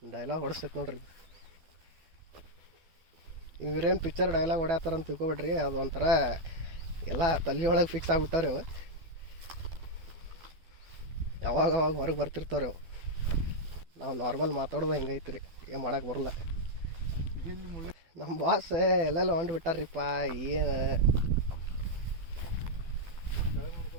ಡೈಲಾಗ್ ಹೊಡಿಸ್ತೈತೆ ನೋಡ್ರಿ. ಇವ್ರೇನು ಪಿಕ್ಚರ್ ಡೈಲಾಗ್ ಹೊಡ್ಯಾತಾರ ಅಂತ ತಿಳ್ಕೊಬೇಡ್ರಿ, ಅದು ಒಂಥರ ಎಲ್ಲ ತಲೆ ಒಳಗೆ ಫಿಕ್ಸ್ ಆಗ್ಬಿಟ್ಟಾರೆ ಅವು. ಯಾವಾಗ ಅವಾಗ ಹೊರಗೆ ಬರ್ತಿರ್ತಾವೆ ಅವು. ನಾವು ನಾರ್ಮಲ್ ಮಾತಾಡೋದು ಹೆಂಗೈತ್ರಿ, ಏನು ಮಾಡೋಕೆ ಬರಲ್ಲ. ನಮ್ಮ ಬಾಸ್ ಎಲ್ಲೆಲ್ಲ ಹೊಂಟು ಬಿಟ್ಟಾರ್ರಿಪ್ಪ. ಏನು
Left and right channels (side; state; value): left; late; 12 ms